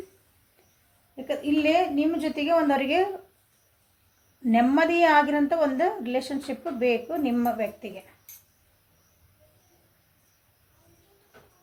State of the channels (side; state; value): both; identical; correlation 1.00